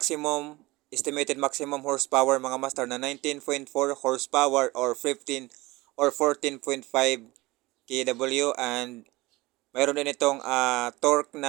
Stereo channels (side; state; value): left; quieter; 20.9 dB